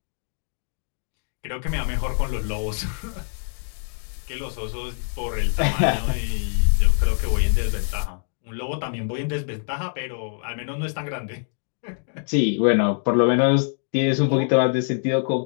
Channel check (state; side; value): silent; right; digital silence